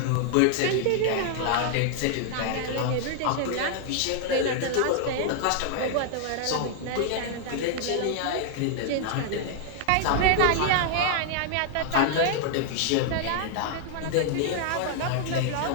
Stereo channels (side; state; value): both; different; correlation 0.00